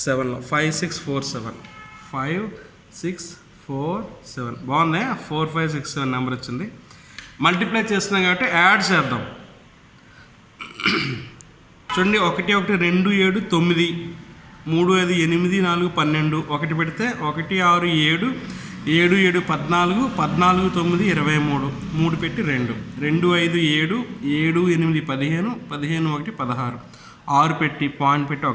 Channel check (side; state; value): both; identical; correlation 1.00